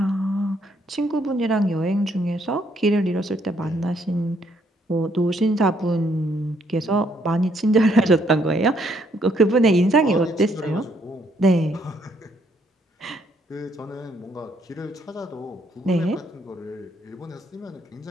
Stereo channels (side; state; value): both; normal; correlation 0.70